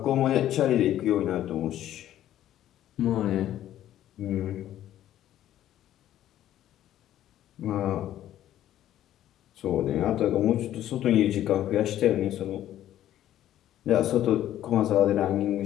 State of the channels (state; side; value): quieter; right; 12.4 dB